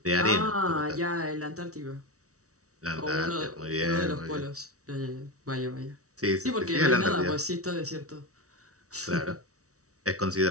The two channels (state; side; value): late; left; 0.65 ms